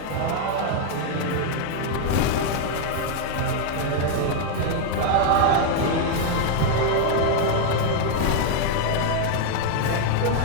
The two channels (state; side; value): different; both; correlation 0.00